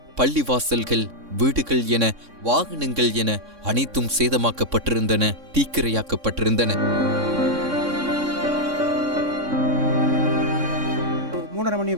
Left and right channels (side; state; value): left; late; 3.6 ms